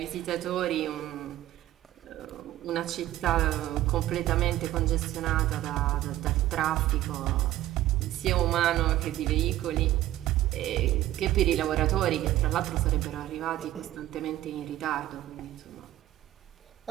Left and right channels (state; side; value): quieter; left; 14.3 dB